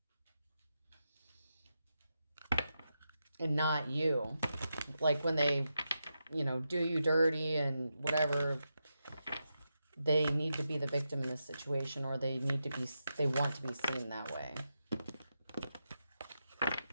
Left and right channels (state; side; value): inverted; both; correlation -0.87